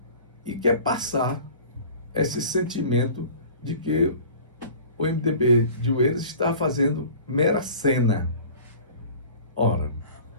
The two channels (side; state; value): both; inverted; correlation -0.43